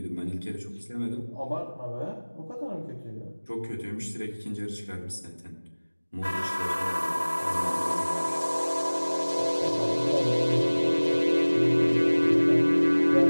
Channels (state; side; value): inverted; both; correlation -1.00